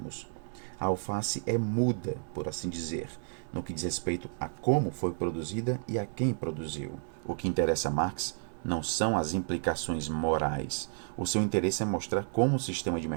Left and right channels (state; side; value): silent; left; 56 dB below the other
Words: A alface é muda, por assim dizer, no que diz respeito a como foi produzida e a quem produziu. O que interessa a Marx não são as implicações morais. O seu interesse é mostrar como o sistema de